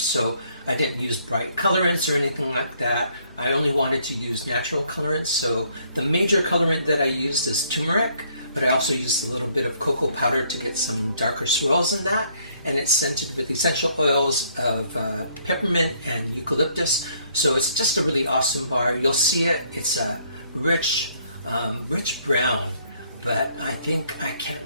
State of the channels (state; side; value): inverted; both; correlation -0.66